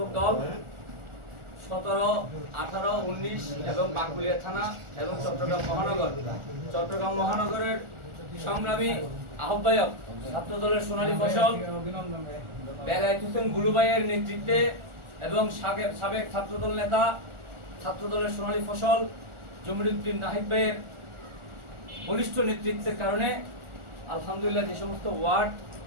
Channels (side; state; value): left; late; 1.4 ms